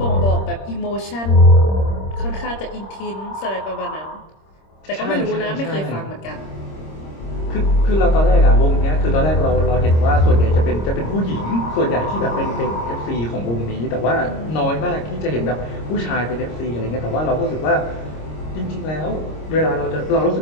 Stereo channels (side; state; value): right; late; 26 ms